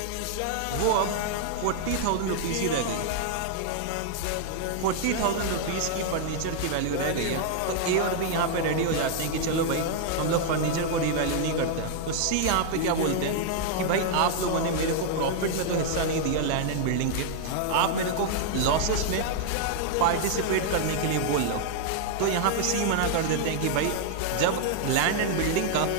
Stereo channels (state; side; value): different; both; correlation 0.00